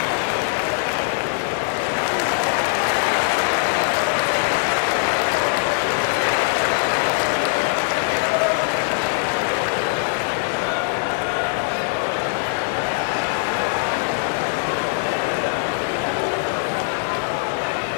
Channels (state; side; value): silent; right; 65 dB below the other